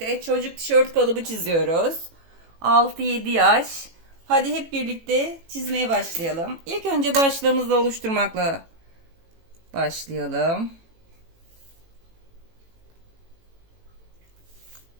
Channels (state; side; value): late; left; 18 ms